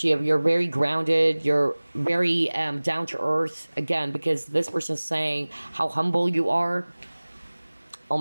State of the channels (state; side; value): inverted; both; correlation -1.00